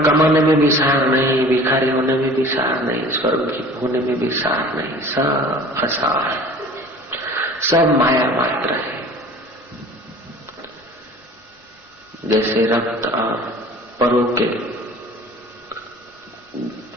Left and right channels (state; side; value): normal; both; correlation 0.44